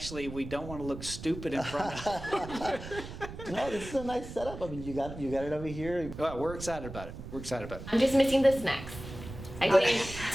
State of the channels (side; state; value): right; noise; rumble, 11 dB below the sound